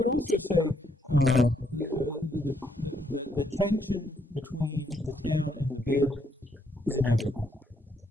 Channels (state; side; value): normal; both; correlation 0.73